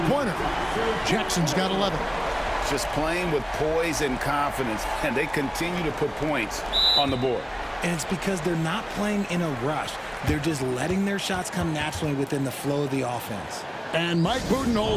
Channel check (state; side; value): identical; both; correlation 1.00